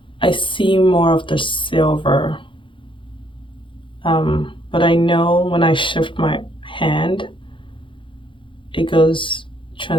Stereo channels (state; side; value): late; right; 0.25 ms